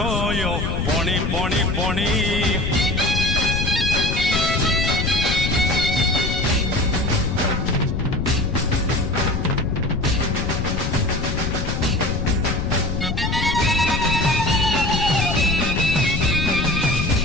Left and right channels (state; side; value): noise; left; rumble, 2 dB below the sound